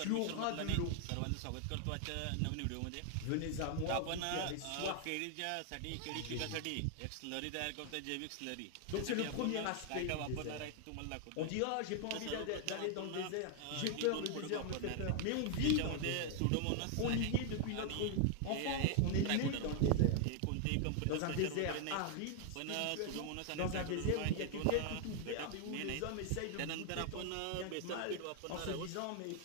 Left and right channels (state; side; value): different; both; correlation 0.00